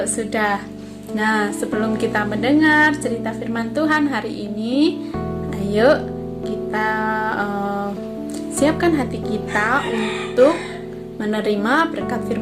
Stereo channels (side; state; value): both; identical; correlation 1.00